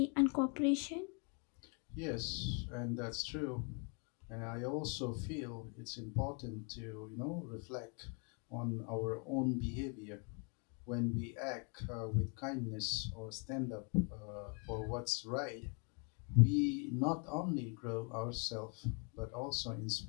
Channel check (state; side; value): quieter; right; 35.8 dB